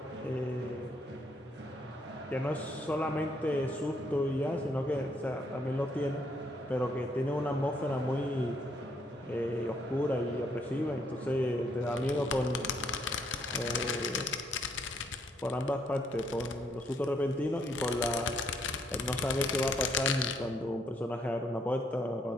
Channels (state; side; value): normal; both; correlation 0.71